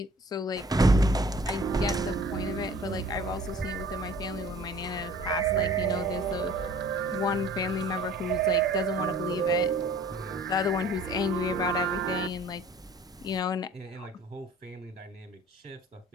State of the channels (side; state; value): both; normal; correlation 0.49